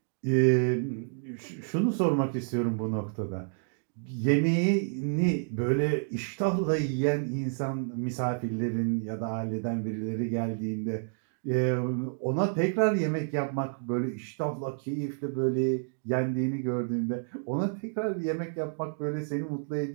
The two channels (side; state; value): left; silent; digital silence